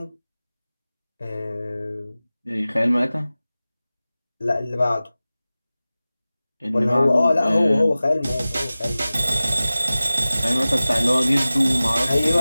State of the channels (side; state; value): both; inverted; correlation -0.97